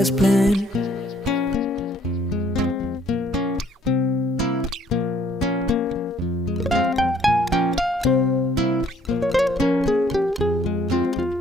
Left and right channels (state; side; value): normal; both; correlation 0.63